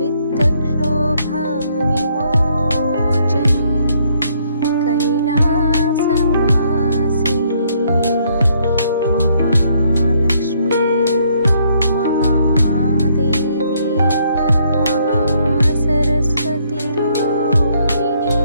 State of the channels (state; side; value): inverted; both; correlation -0.69